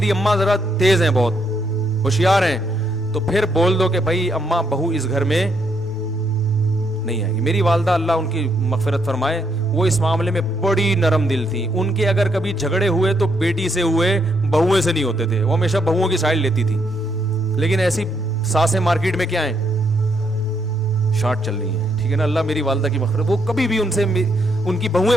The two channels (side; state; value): both; normal; correlation 0.75